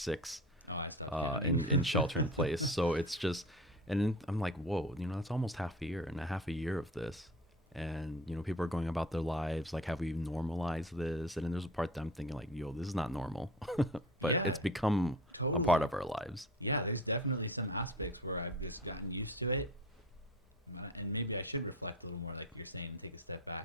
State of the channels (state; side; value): normal; both; correlation 0.37